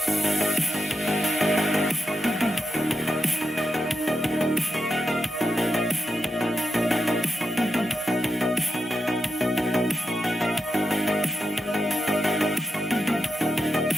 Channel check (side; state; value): both; normal; correlation 0.87